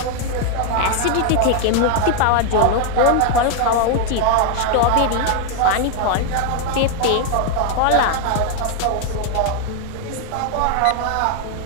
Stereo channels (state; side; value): different; both; correlation 0.00